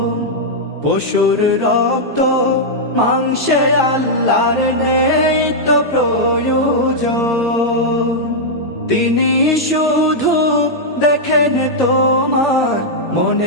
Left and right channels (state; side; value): normal; both; correlation -0.06